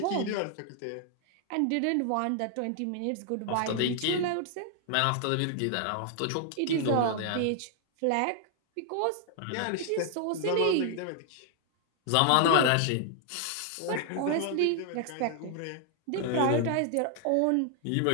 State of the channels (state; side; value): different; both; correlation 0.00